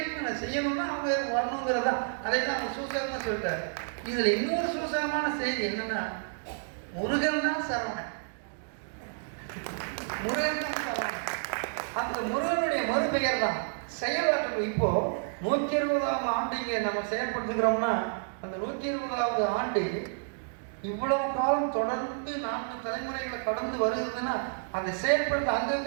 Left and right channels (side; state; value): left; silent; digital silence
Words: அவங்க வரணுங்கிறதா. அதை தான் அவங்க சூசகமாக சொல்லிட்டாரு. இதுல இன்னொரு சூசகமான செய்தி என்னன்னா, முருகன் தான் சரவணன். அந்த முருகனுடைய மறுபெயர் தான் செயலாற்று. இப்போ 120ஆம் ஆண்டு இங்கே நம்ம செயல்படுத்துகிறோம்னா, அந்த 120வது ஆண்டு இவ்வளவு காலம் தொடர்ந்து 4 தலைமுறைகளை கடந்து வருகிறதுன்னா, அதை செயல்படுத்த